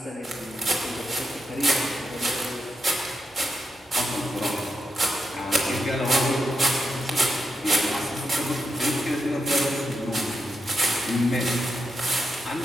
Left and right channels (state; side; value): normal; both; correlation 0.85